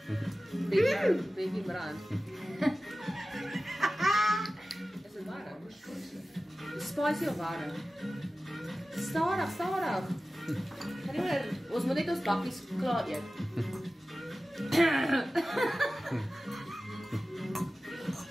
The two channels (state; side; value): normal; both; correlation 0.96